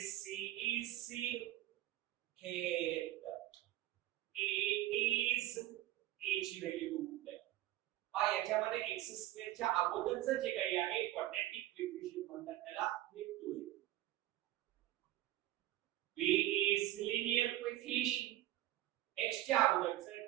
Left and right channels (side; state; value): left; quieter; 14.8 dB